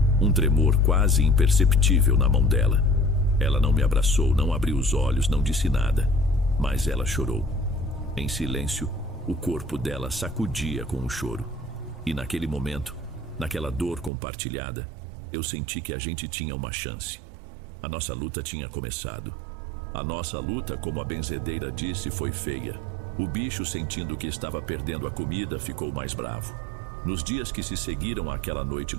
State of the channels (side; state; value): left; drops out; at 14.1 s